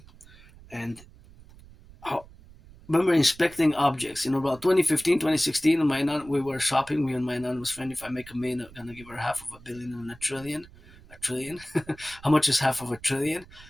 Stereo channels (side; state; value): right; noise; rumble, 22 dB below the sound